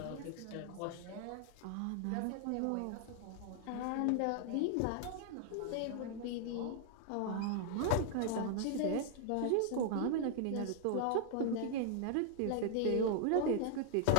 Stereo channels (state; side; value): different; both; correlation -0.01